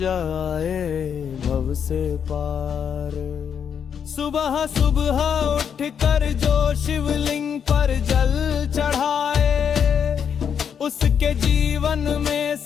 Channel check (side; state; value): right; quieter; 7.6 dB